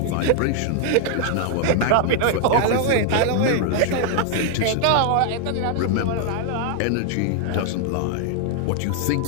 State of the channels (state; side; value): different; both; correlation 0.00